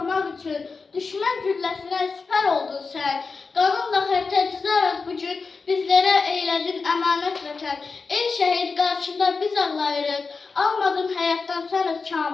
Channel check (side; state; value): right; quieter; 4.5 dB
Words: üçün düşmən gülləsinə sipər oldun sən. Qanınla xərtə cızaraq bugün bizlərə eylədin əmanət vətən. Ey şəhid, qarşında biz ağlayırıq. Almadın həyatdan sən öz